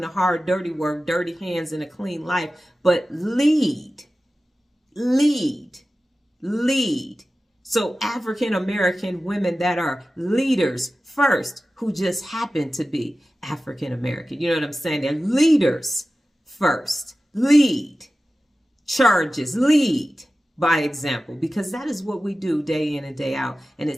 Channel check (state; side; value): normal; both; correlation 0.95